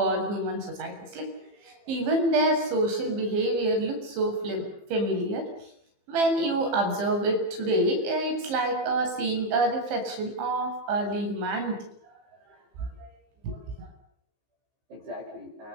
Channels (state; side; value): late; left; 15 ms